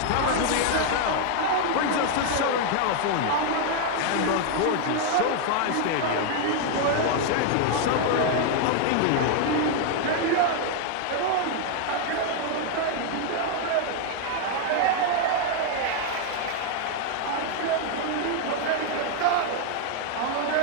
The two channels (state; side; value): different; both; correlation 0.00